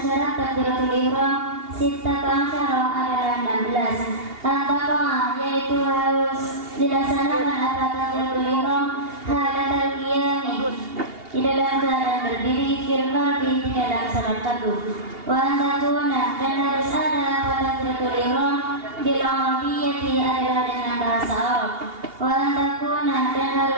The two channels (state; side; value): late; left; 2.8 ms